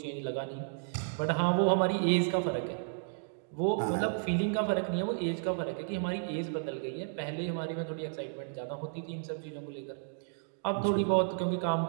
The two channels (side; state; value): left; silent; digital silence